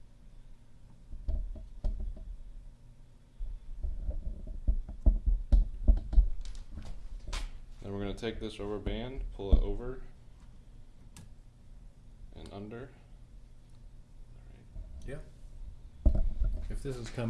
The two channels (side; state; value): both; identical; correlation 1.00